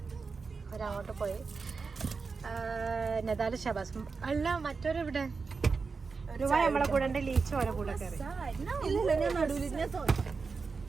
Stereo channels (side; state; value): left; quieter; 4.7 dB